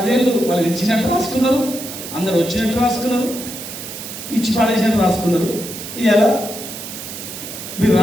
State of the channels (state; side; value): noise; right; hiss, 10 dB below the sound